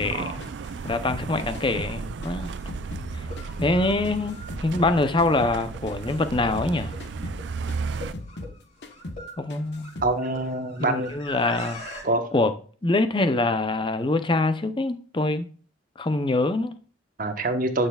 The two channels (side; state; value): both; normal; correlation 0.47